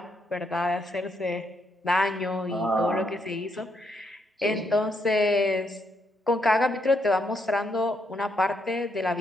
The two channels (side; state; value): both; normal; correlation 0.77